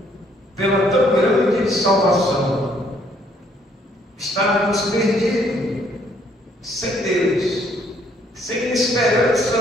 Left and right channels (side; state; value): both; normal; correlation 0.66